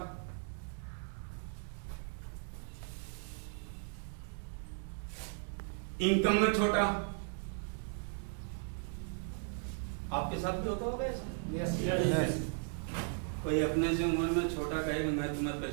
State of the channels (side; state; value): left; silent; 53 dB below the other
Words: इनकम में छोटा। आपके साथ भी होता होगा ऐसा? Yes. कोई अपने से उम्र में छोटा कहेगा मैं तुम्हें